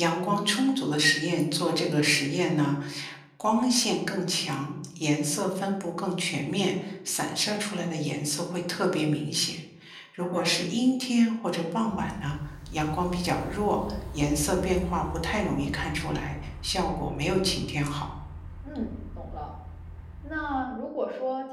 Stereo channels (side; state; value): both; identical; correlation 1.00